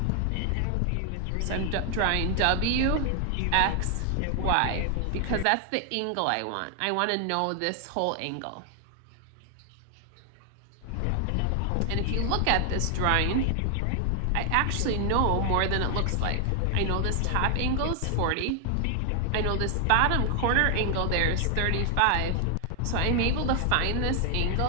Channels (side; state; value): both; different; correlation 0.00